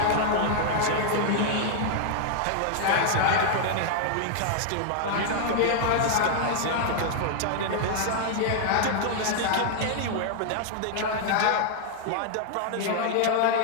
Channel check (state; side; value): different; both; correlation -0.01